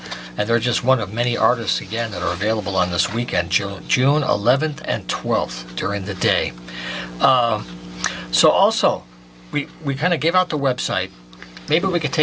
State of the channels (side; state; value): both; identical; correlation 1.00